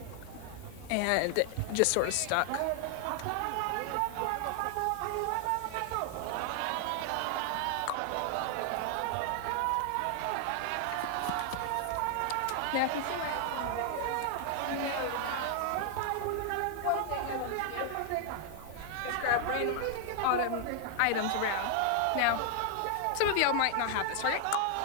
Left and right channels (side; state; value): both; different; correlation 0.00